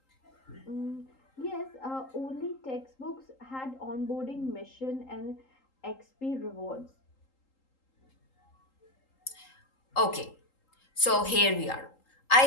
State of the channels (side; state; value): right; late; 3.8 ms